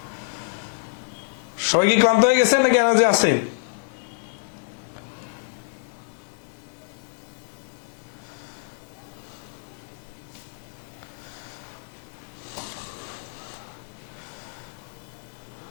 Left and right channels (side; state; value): right; silent; digital silence